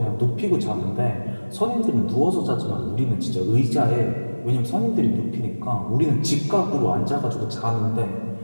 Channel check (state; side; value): inverted; both; correlation -1.00